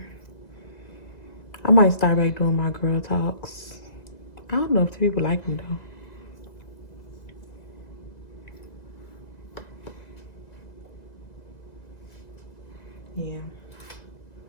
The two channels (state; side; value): late; right; 1.9 ms